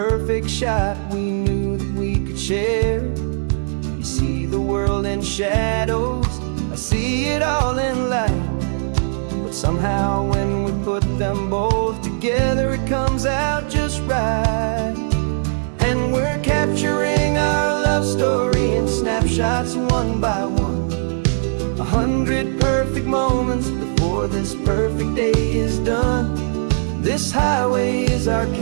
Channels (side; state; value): left; silent; 66 dB below the other